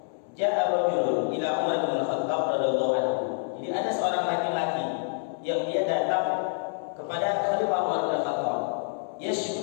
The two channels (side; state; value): right; silent; digital silence